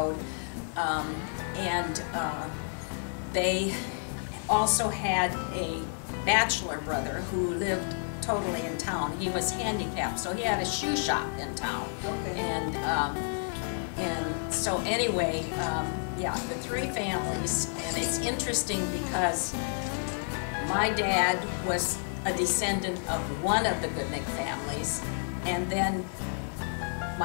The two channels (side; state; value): right; silent; 58 dB below the other